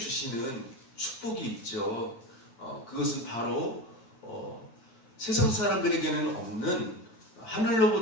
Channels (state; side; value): late; right; 9.1 ms